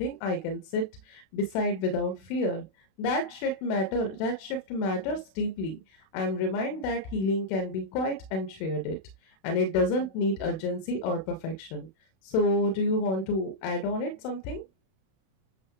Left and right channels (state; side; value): late; right; 31 ms